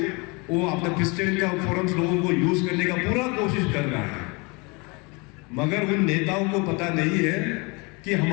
वो अपना क्रिश्चियन का फोरम्स लोगों को यूज करने का पूरा कोशिश कर रहा है, मगर उन नेताओं को पता नहीं है कि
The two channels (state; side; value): quieter; right; 28.7 dB